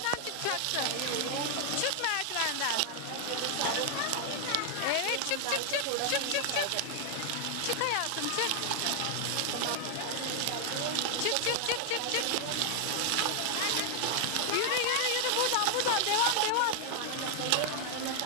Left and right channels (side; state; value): both; different; correlation 0.00